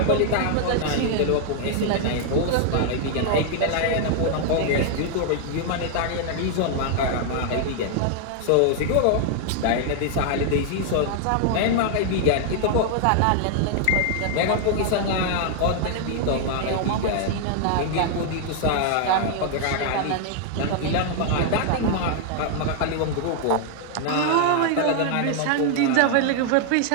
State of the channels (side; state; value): both; different; correlation 0.00